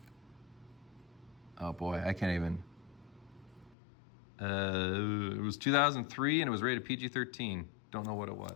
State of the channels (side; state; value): right; drops out; at 3.8 s